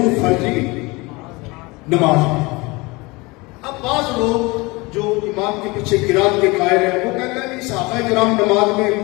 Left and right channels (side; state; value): right; quieter; 24.4 dB